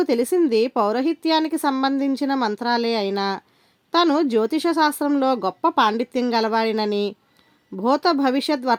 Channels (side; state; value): both; identical; correlation 1.00